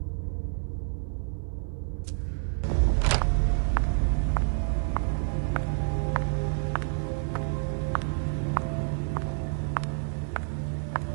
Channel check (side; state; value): left; silent; 57 dB below the other